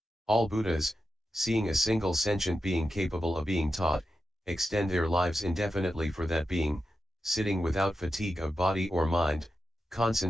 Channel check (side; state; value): both; normal; correlation 0.89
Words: All Buddhas, seeing a single sentient being capable of being taught, extend their lives indefinitely for that being, sitting without fatigue of body or mind,